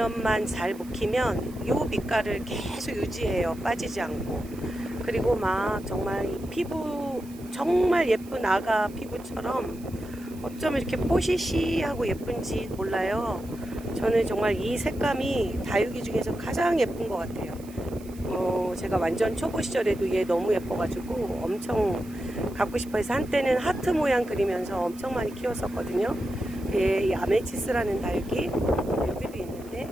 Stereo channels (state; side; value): noise; right; hiss, 23 dB below the sound